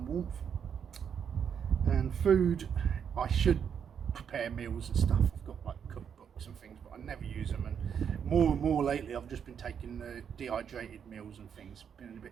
warmth. And food, I should prepare meals and stuff. I've got like cookbooks and things, but I never use them, and more lately I've just been taking the dehydrated meals and things, been a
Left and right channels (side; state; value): left; quieter; 7.7 dB